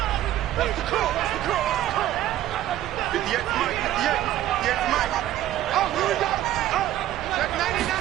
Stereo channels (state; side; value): quieter; left; 13.3 dB